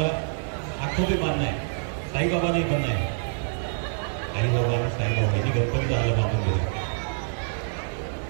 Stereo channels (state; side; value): silent; left; digital silence